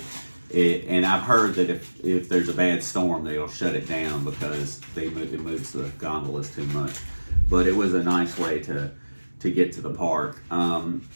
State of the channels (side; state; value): both; inverted; correlation -1.00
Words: and I've heard that if there's a bad storm, they'll shut it down because it moves the gondolas too much. But it was a nice way to get to the park.